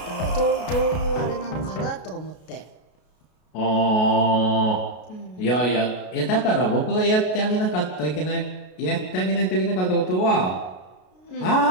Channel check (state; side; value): late; right; 33 ms